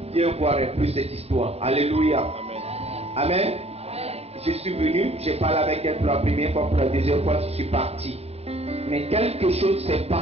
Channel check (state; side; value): late; left; 0.30 ms